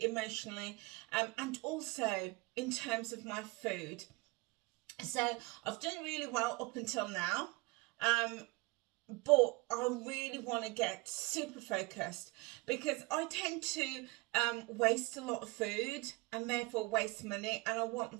emotionally, and also in terms of my food. So I've done really well up until now, but I really want to get super focused because I tend to waste a lot of food and therefore waste money, and I want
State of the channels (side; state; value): left; quieter; 24.4 dB